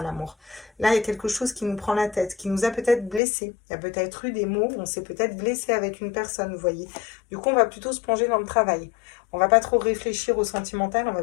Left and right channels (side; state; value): right; drops out; at 3.2 s